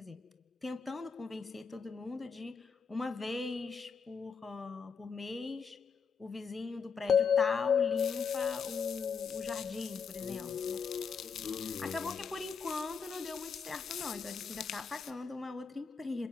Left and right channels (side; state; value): right; quieter; 5.9 dB